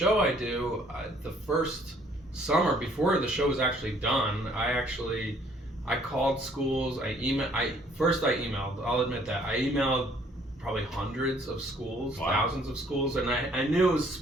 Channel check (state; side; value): normal; both; correlation 0.61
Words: I do, the first summer before the show was actually done, I called schools. I emailed. I'll admit that I emailed probably hundreds of schools, thousands of schools, and I knew it was